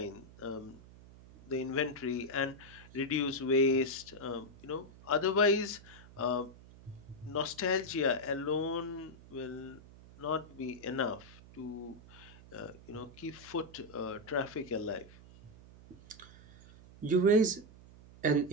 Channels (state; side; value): noise; right; hum, 20 dB below the sound